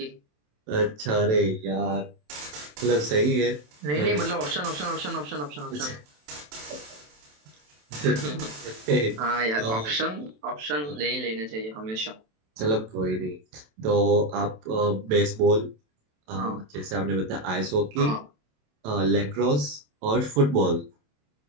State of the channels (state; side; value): late; left; 27 ms